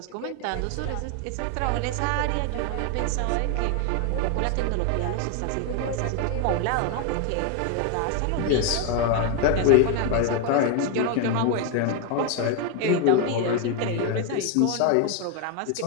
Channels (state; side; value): different; both; correlation 0.01